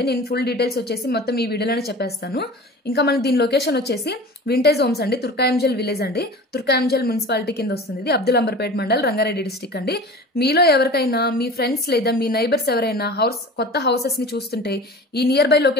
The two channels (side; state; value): both; normal; correlation 0.37